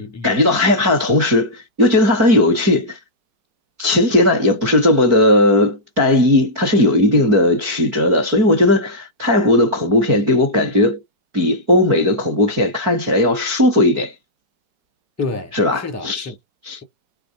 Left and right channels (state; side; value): late; left; 4.5 ms